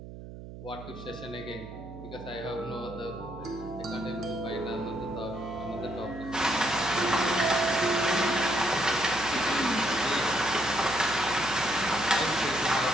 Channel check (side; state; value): right; noise; hum, 13 dB below the sound